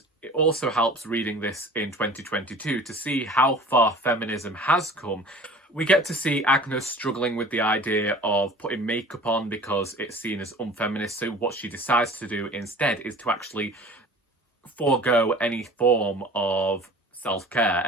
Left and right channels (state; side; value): normal; both; correlation 0.44